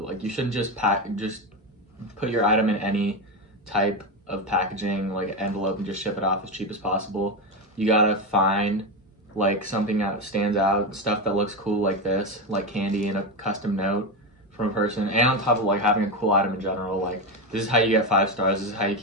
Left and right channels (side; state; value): both; normal; correlation 0.13